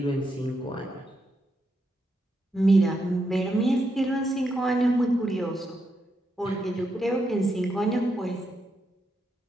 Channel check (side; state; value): both; normal; correlation 0.82